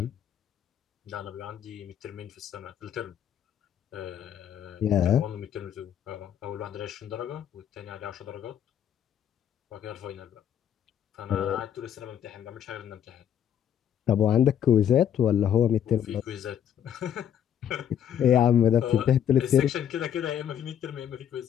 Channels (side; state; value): right; quieter; 9.5 dB